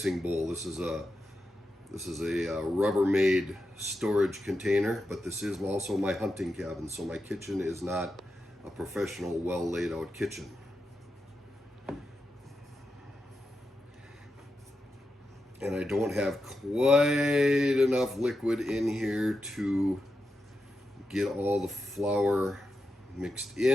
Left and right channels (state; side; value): normal; both; correlation 0.88